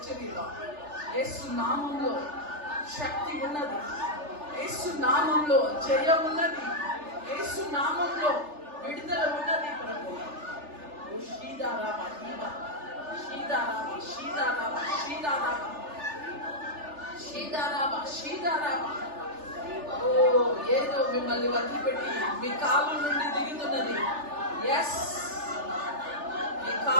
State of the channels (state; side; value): late; left; 3.4 ms